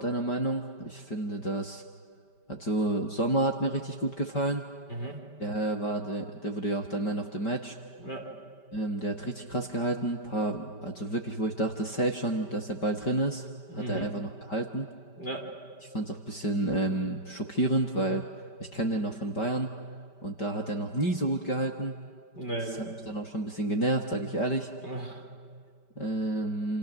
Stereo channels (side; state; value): right; late; 5.1 ms